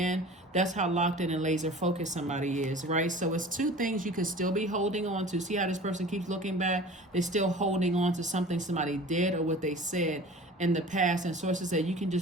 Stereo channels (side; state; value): both; normal; correlation 0.41